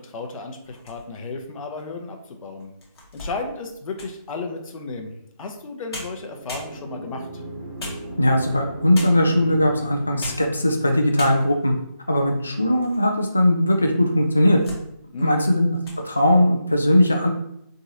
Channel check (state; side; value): inverted; both; correlation -0.87